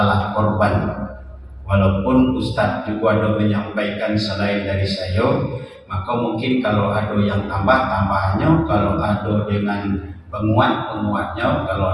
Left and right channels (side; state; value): both; identical; correlation 1.00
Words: korban. Walaupun Ustadz juga ada menyampaikan selain dari saya, maka mungkin kalau ada yang tambah-tambahnya, kalau ada dengan penguat-penguatnya, kalau